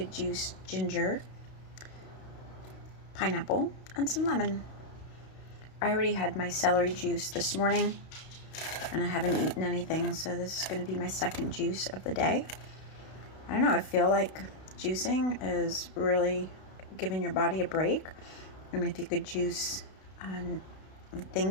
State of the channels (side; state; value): right; late; 32 ms